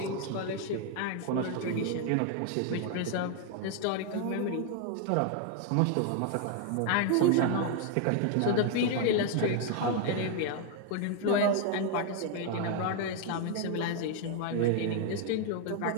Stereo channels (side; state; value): both; different; correlation 0.00